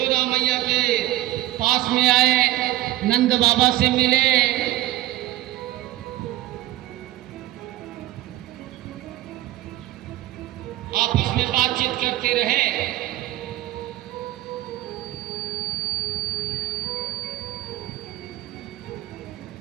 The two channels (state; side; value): quieter; left; 15.5 dB